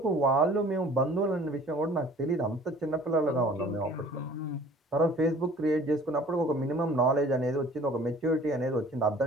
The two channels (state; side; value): normal; both; correlation 0.50